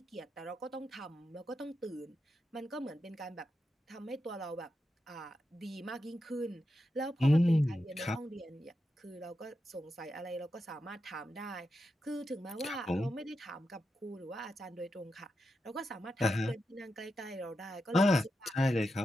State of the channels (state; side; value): normal; both; correlation 0.88